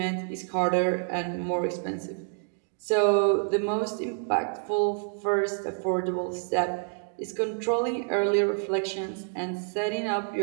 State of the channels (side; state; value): left; silent; 58 dB below the other